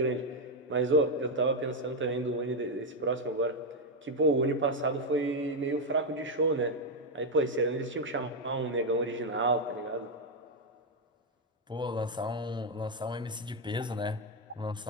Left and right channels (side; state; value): both; normal; correlation 0.03